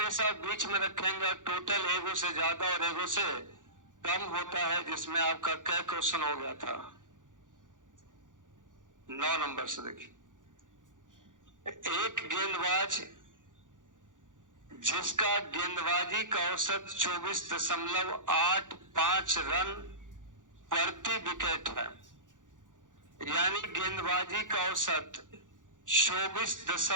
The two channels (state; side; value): late; left; 0.87 ms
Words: बीच में रखेंगे और टोटल एगो से ज्यादा और एगो से कम होता है, जिसमें आपका क्या क्वेश्चन हो गया था 9 नंबर से। देखिए, एक गेंदबाज जिसका गेंदबाजी का औसत 24.85 रन प्रति विकेट है, यानी गेंदबाजी का औसत